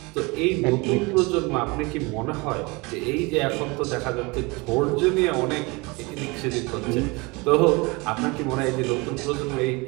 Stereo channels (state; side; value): quieter; left; 26.2 dB